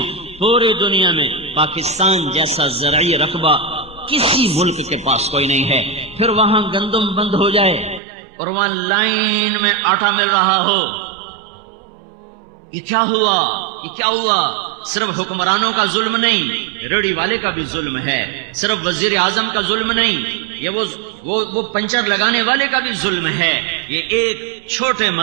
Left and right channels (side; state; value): left; drops out; at 8.0 s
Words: پوری دنیا میں پاکستان جیسا زرعی رقبہ کسی ملک کے پاس کوئی نہیں ہے۔ پھر وہاں گندم بند ہو جائے اور وہاں لائن میں آٹا مل رہا ہو، یہ کیا ہوا؟ یہ کیا ہوا؟ صرف حکمرانوں کا ظلم نہیں، ریڑھی والے کا بھی ظلم ہے، صرف وزیر اعظم کا ظلم نہیں، یہ وہ پنچر لگانے والے کا بھی ظلم ہے، یہ ایک چھوٹے